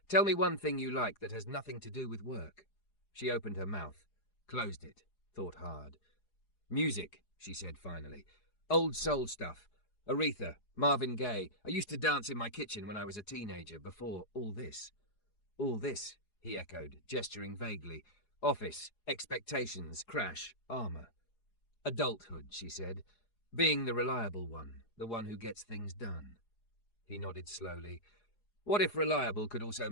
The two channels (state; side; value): late; right; 4.8 ms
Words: "tell me one thing you like that has nothing to do with work." She opened her mouth, closed it, thought hard. "Music," she said finally. "Old soul stuff. Aretha, Marvin Gaye. I used to dance in my kitchen when I was a teenager, before all this." "All this," he echoed, gesturing vaguely. "Office, expectations, crash, armor." "Adulthood," she said. "Being the reliable one, the one who gets things done." He nodded slowly. "What if reliable could also